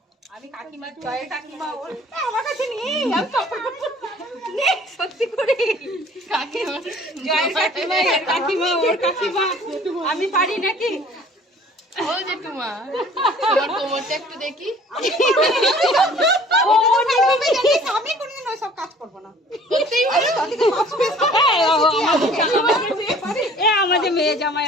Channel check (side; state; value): both; normal; correlation 0.51